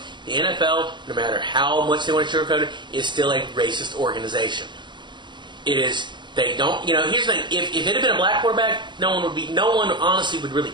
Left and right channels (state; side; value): late; left; 0.22 ms